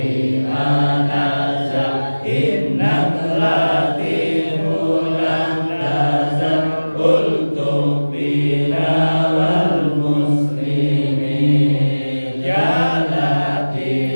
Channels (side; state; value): both; inverted; correlation -1.00